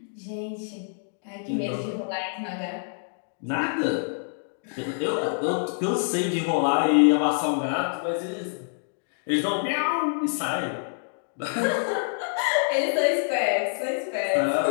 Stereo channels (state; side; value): silent; right; digital silence